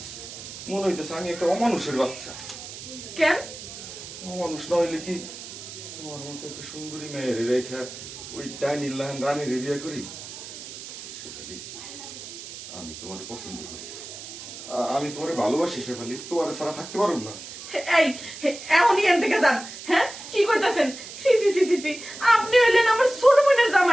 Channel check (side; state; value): right; noise; hiss, 12 dB below the sound